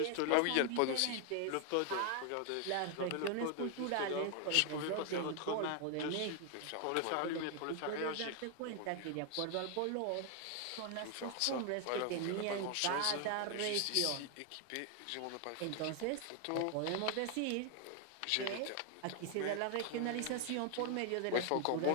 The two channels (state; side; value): different; both; correlation 0.00